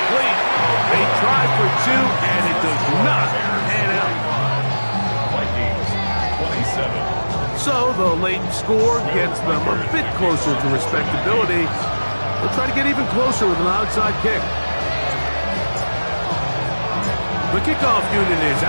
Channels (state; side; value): inverted; both; correlation -1.00